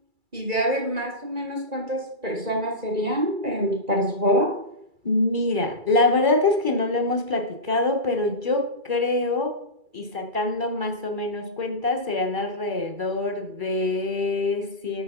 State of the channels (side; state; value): left; late; 2.3 ms